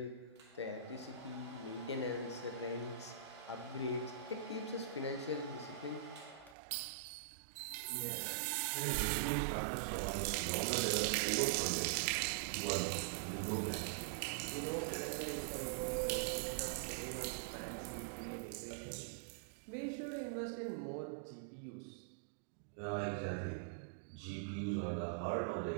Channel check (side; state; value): left; drops out; at 6.6 s